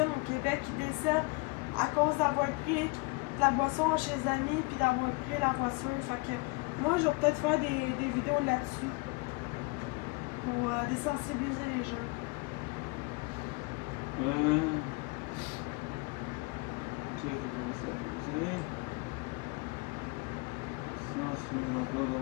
au Québec qui décèdent à cause d'avoir pris de la boisson chez les amis puis d'avoir pris la voiture. Fait que moi je vais peut-être faire des vidéos là-dessus pour désensibiliser les jeunes.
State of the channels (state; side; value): quieter; right; 27.7 dB